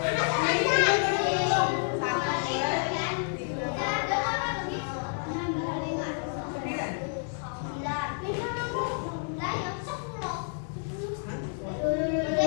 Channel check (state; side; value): silent; right; 56 dB below the other